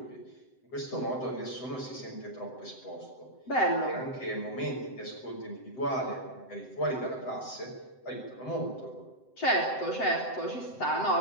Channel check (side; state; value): right; late; 7.8 ms